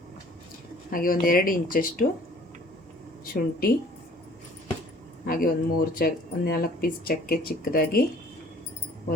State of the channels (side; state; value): both; normal; correlation 0.53